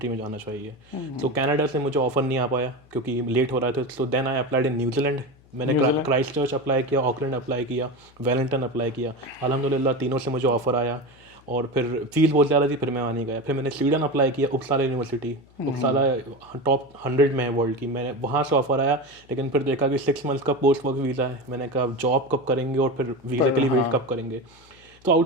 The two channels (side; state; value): left; noise; hum, 28 dB below the sound